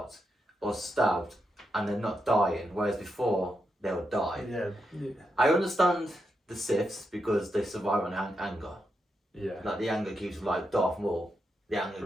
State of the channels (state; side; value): normal; both; correlation 0.84